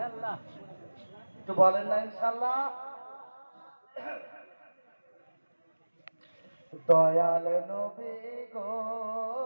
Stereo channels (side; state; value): both; inverted; correlation -1.00